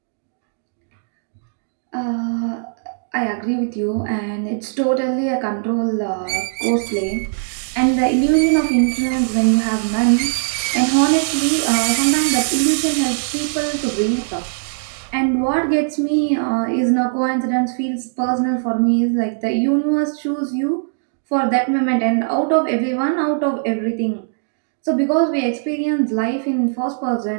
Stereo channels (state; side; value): silent; left; digital silence